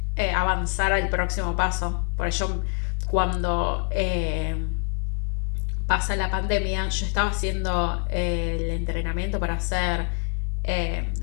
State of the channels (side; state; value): right; quieter; 38.8 dB